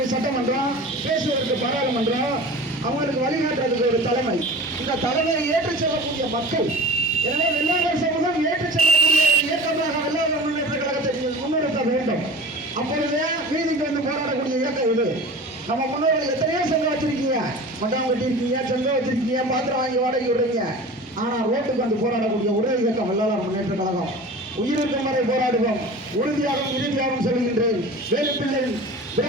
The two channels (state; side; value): normal; both; correlation 0.37